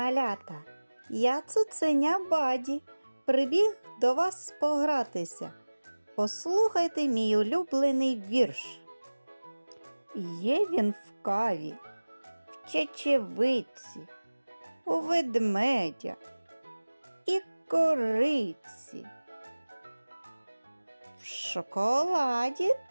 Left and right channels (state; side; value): inverted; both; correlation -1.00